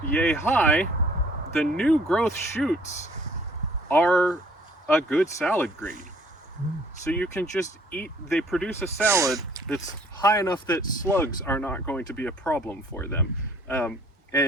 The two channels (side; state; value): both; normal; correlation 0.57